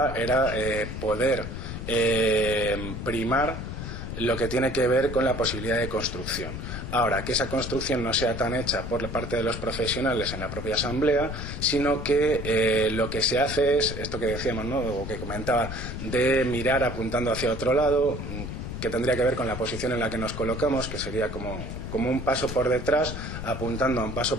era poder primar lo que tiene que ver con la posibilidad de construcción. Ahora, que esa construcción no sea tan hecha por parte de los profesionales en la propia asamblea, sino que lo que se hace es, esto que decíamos, ¿no?, o que comentaba, de mirar apuntando hacia otro lado, que tendría que ver con la posición en la que nos colocamos, que sería como un paso por detrás, apuntando a un paso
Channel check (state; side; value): noise; left; rumble, 7 dB below the sound